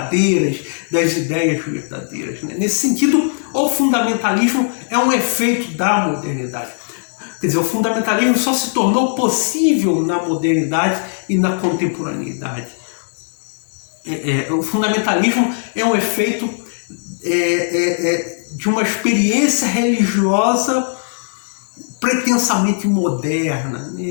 das ideias verdadeiras, né? Nesse sentido, o fundamentalismo é um efeito da modernidade. Quer dizer, o fundamentalismo só se tornou possível na modernidade e na contemporaneidade. O fundamentalismo é um efeito de uma experiência religiosa pretensamente moderna, né?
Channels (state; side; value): silent; right; 67 dB below the other